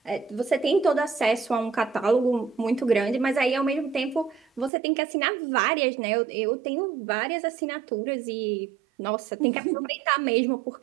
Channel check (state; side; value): drops out; left; at 4.7 s